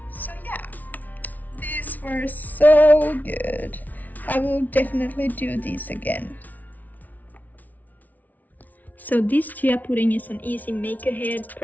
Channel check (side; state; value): right; late; 0.077 ms